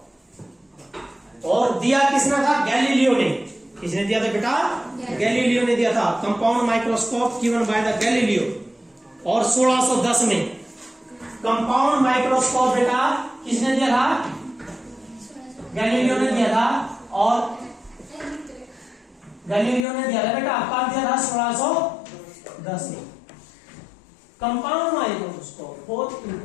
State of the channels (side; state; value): right; drops out; at 19.9 s